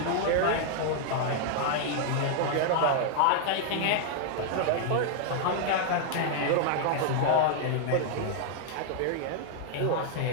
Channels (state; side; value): different; both; correlation 0.00